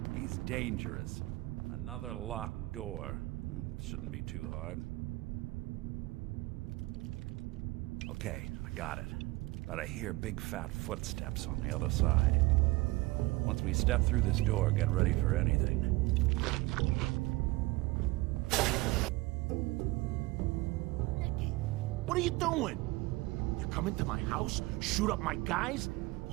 He's dangerous. Another locked door. Shouldn't be too hard. Okay, I got it. But I hear big fat footsteps on the other side. Once we step through this door, get ready for anything. What are you doing? You come into my house, shoot up my guys?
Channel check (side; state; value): left; quieter; 21.3 dB